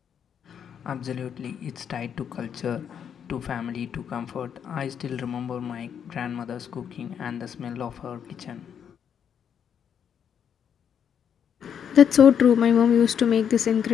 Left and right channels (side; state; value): right; quieter; 8.1 dB